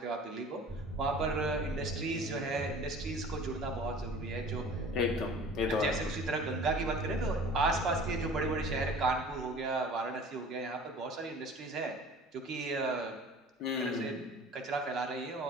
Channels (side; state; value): both; normal; correlation 0.45